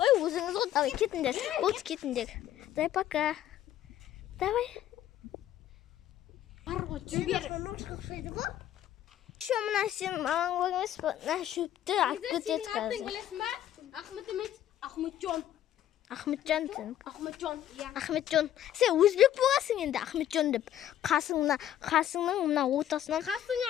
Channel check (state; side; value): quieter; right; 11.7 dB